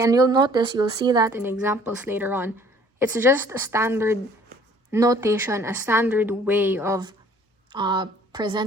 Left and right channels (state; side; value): normal; both; correlation 0.56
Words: and you'll see that in examples later on. It's just a standard notation, a standard way of